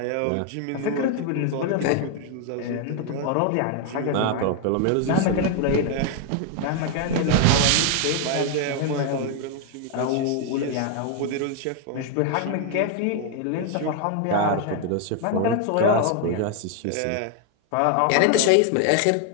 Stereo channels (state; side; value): different; both; correlation 0.00